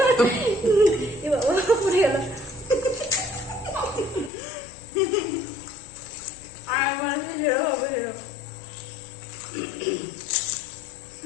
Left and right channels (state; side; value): drops out; right; at 4.3 s